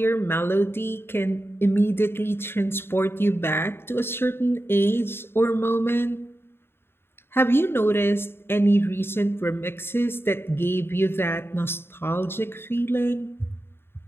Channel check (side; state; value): right; late; 0.11 ms